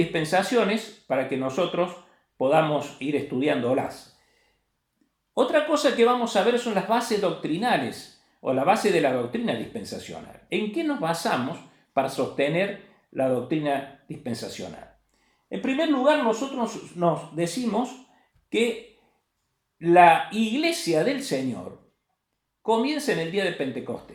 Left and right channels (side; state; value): both; identical; correlation 1.00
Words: para que nosotros podamos ir estudiándolas. Otra cosa que vamos a ver son las bases doctrinales o la base de la doctrina dispensacional. ¿En qué nos basamos para sostener la doctrina dispensacional? En primer lugar, nosotros nos decimos que la iglesia del Señor comienza en el día de